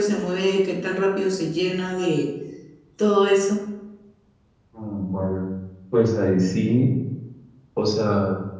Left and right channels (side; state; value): both; identical; correlation 1.00